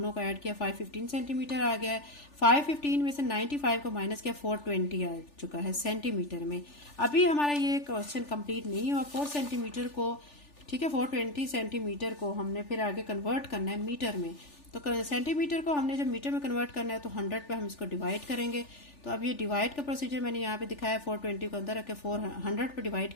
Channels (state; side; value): late; right; 3.4 ms